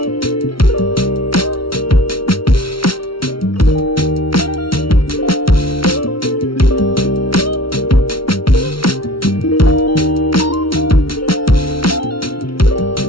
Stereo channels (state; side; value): late; right; 0.74 ms